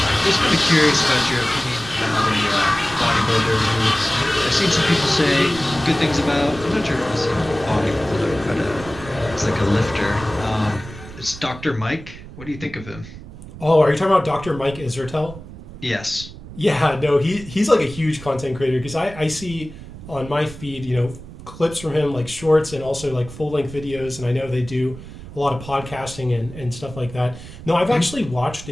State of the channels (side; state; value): right; noise; rumble, 15 dB below the sound